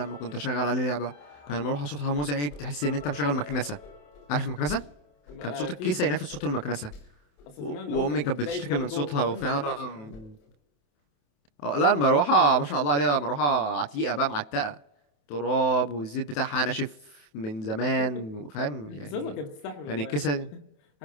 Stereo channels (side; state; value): right; late; 28 ms